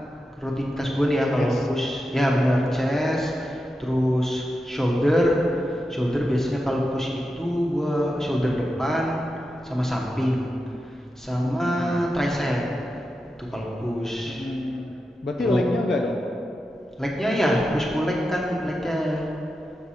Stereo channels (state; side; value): normal; both; correlation 0.89